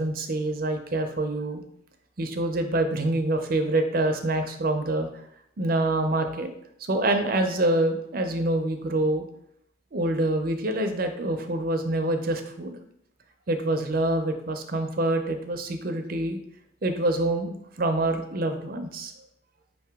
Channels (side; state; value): both; normal; correlation 0.35